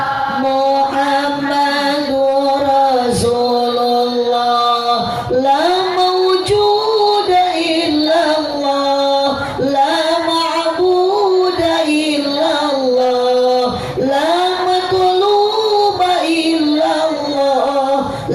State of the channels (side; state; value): both; identical; correlation 1.00